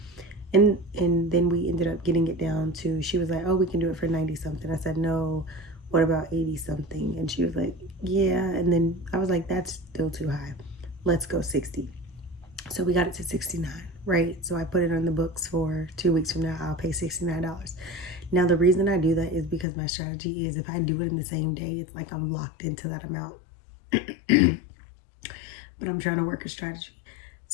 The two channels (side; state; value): right; drops out; at 19.7 s